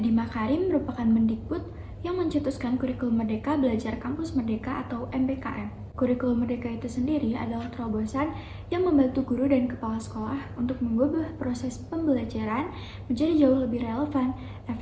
Makarim merupakan Mendikbud yang mencetuskan kurikulum Merdeka Belajar Kampus Merdeka atau MBKM. Kurikulum Merdeka itu sendiri adalah terobosan yang membantu guru dan kepala sekolah untuk mengubah proses pembelajaran menjadi jauh lebih relevan,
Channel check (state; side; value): identical; both; correlation 1.00